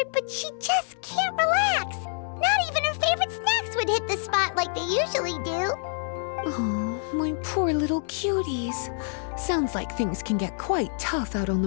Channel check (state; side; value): silent; right; digital silence